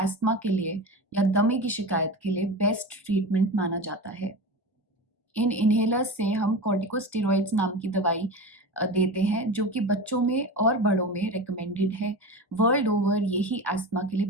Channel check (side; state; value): both; normal; correlation 0.27